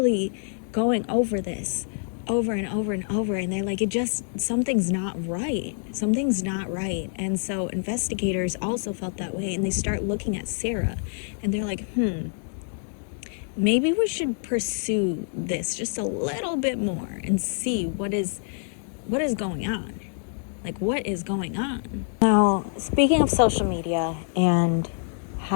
going over this over and over and over, and they're like, something's not right. Something's not right. And so investigators also felt that way, and they start looking at Sarah, and they're like, maybe we should pursue this just a little bit more and see what is going on. Like, what is going on? Now, speaking of social media and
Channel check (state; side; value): silent; right; 61 dB below the other